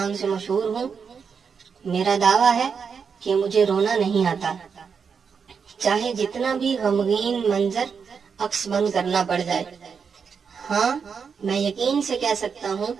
से मशहूर हूँ। मेरा दावा है कि मुझे रोना नहीं आता, चाहे जितना भी गमगीन मंजर अक्स बंद करना पड़ जाए। हाँ, मैं यकीन से कह सकता हूँ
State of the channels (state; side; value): quieter; left; 6.1 dB